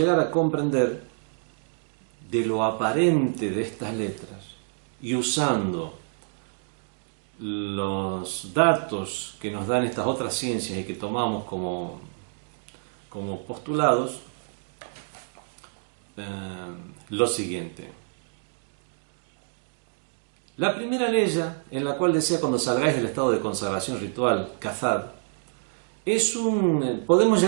a comprender de lo aparente de estas letras y usando los datos que nos dan estas otras ciencias y que tomamos como postulados, lo siguiente. La primera ley en la cual decía cuando salgáis del estado de consagración ritual, cazad, podemos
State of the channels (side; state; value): left; silent; 60 dB below the other